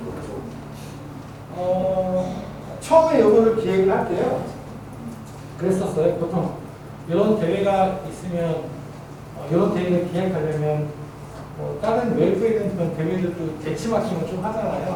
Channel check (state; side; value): identical; both; correlation 1.00